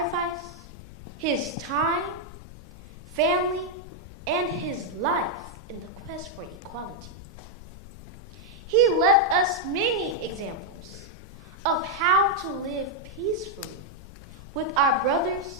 his time, family, and his life in the quest for equality. He left us many examples of how to live peacefully with our brothers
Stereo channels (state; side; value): noise; left; hum, 21 dB below the sound